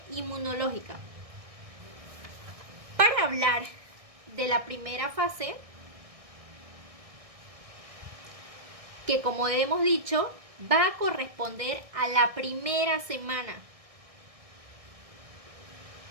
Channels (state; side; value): late; left; 1.6 ms